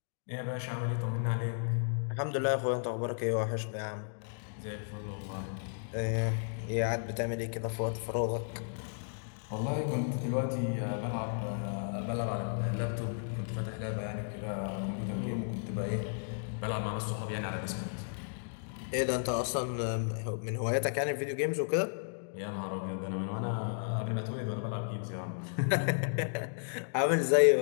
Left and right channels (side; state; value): right; silent; digital silence